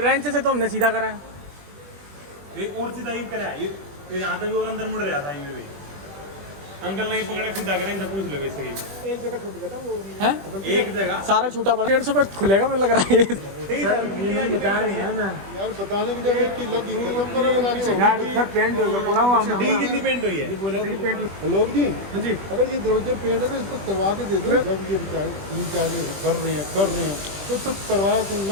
से तो हमने सीधा करा है। ये और सीधा यूं करा है, ये यहाँ तक भी और अंदर मुड़ रहा था, ये भी अंकल नहीं पकड़े सीधा करें तो पूछ लो वैसे ही। एक जगह छूट गया था वो है, एक जगह सारा छूटा पड़ा। 150 रुपये खुलेगा मुझे लग रहा है। बताया नहीं है ना यार बताने की जगह कि लगी खत्म करो लगा के यार सर पेंट हो गया पूरा हुआ डी कितनी पेंट हुई है? लोग जी हाँ जी, अगर ये दरवाजे पेंट है तो इसको करवा के दे दो। जब ये बेचारे तीन चार कर रहे हैं तो सब करवाया तो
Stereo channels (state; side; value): late; left; 20 ms